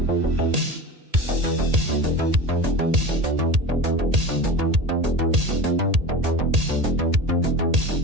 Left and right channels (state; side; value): late; left; 1.8 ms